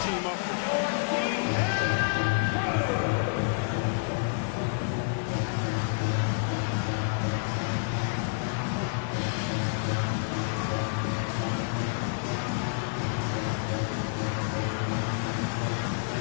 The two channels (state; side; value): silent; right; 59 dB below the other